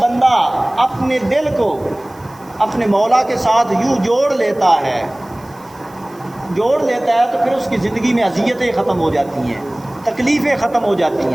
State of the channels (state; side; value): noise; right; hiss, 28 dB below the sound